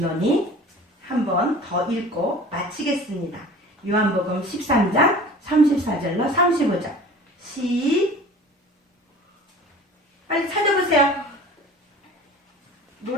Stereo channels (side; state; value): both; normal; correlation 0.42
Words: 한 번 더 읽고 마치겠습니다. 요한복음 13장 34절로 35절 빨리 찾아보세요.